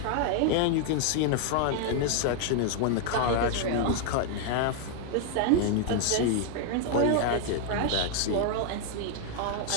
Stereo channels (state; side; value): different; both; correlation 0.00